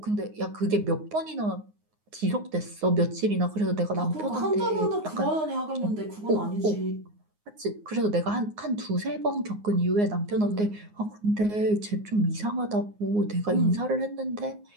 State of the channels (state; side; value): late; left; 9.6 ms